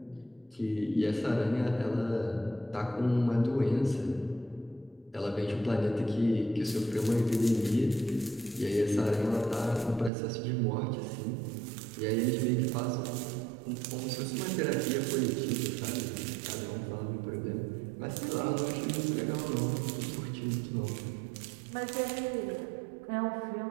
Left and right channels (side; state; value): left; drops out; at 10.1 s